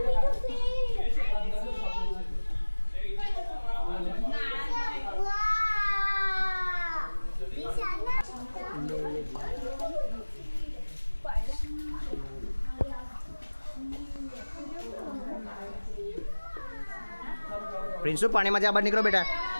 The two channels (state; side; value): inverted; both; correlation -1.00